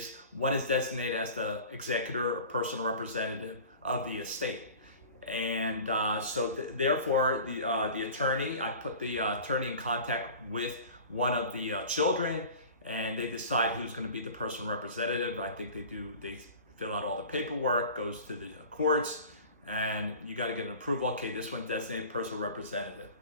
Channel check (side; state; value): both; inverted; correlation -0.40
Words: one is designated as the executor or personal representative of the estate. And therefore, the attorney, I put the attorney in contact with one of the children, and they decide who's going to be the personal representative. I think they fill out all the paperwork, goes to the courts, and you got to get an approval. Okay, this one's designated personal representative.